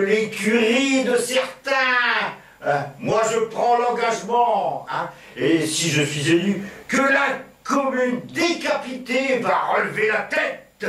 de certains. Moi, je prends l'engagement, hein, et si je suis élu, que la commune décapitée va relever la tête,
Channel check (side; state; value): both; identical; correlation 1.00